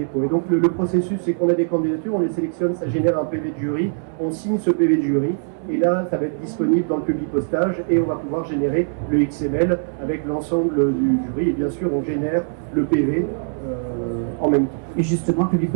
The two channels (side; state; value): left; silent; 65 dB below the other